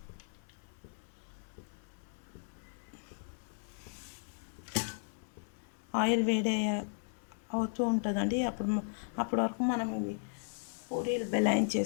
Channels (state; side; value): silent; right; 54 dB below the other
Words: ఆయిల్ వేడి అవుతూ ఉంటుందండి. అప్పటి వరకు మనం ఇవి పూరీలు